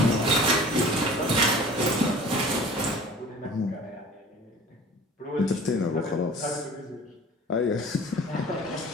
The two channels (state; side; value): normal; both; correlation 0.44